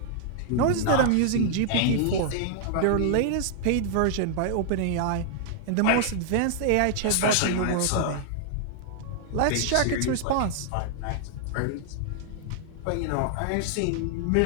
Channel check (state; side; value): different; both; correlation -0.01